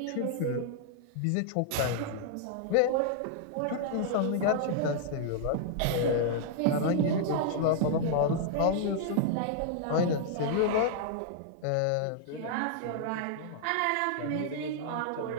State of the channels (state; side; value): different; both; correlation -0.01